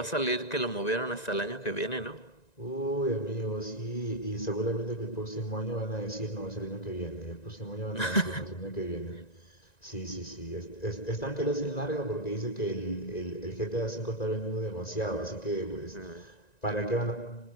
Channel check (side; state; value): right; late; 1.9 ms